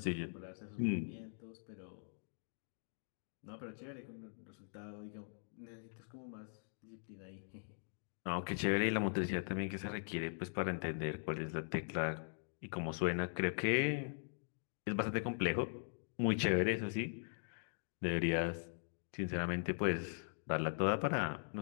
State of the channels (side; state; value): right; silent; digital silence